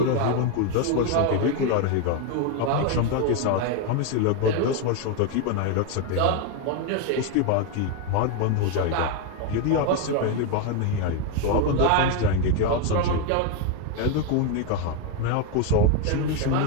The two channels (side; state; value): both; different; correlation 0.02